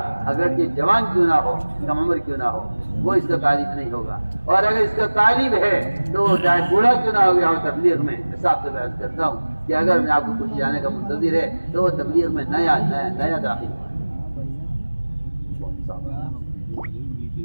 اگرچہ جوان کیوں نہ ہو، کم عمر کیوں نہ ہو، وہ اس کا تعریف نہیں ہوگا، اور اگر اس کا تعریف ہے تو وہ چاہے بوڑھا کیوں نہ ہو گیا ہو تبلیغ میں۔ حساب سے بحث کرتا ہوں کہ اگر میں آپ کو پوچھے جانے کا منتظر ہے تو وہ تبلیغ میں نیا داخل ہوا۔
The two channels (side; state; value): both; inverted; correlation -1.00